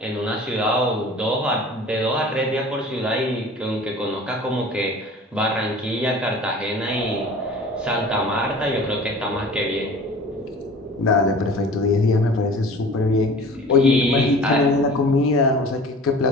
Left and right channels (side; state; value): both; normal; correlation 0.43